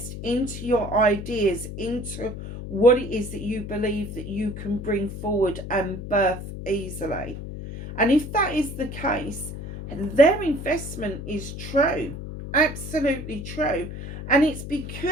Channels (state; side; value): noise; left; hum, 9 dB below the sound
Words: into your ideas, into what it is that you believe that you can bring forward and birth easily. And if that is the case, their investment is true, absolutely true. And it's